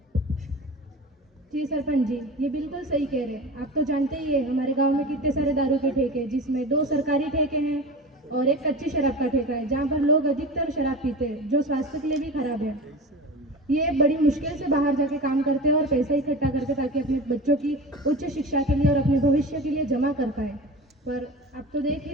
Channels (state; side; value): normal; both; correlation 0.32